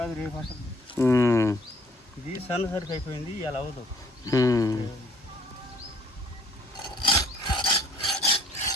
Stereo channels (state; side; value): normal; both; correlation 0.59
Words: రేపు వస్తుంది. ఇది సన్న సరికి అయిపోయింది, ఇలా అవ్వదు.